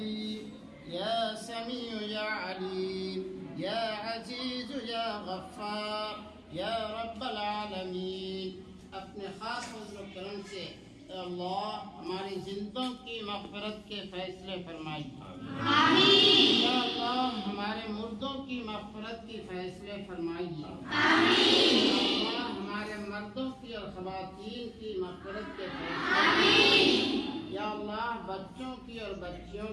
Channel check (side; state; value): both; identical; correlation 1.00